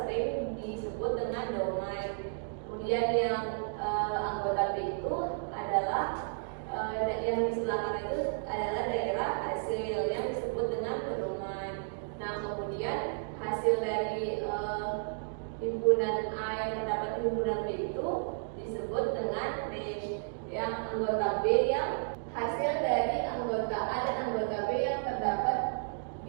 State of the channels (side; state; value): left; silent; digital silence